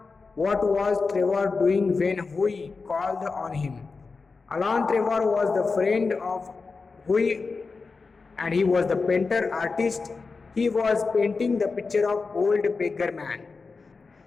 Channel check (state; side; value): quieter; right; 4.4 dB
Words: What was Trevor doing when Hui called on him? Alan Trevor was the friend of Hui and he was the painter artist. He was painting the picture of old beggar man.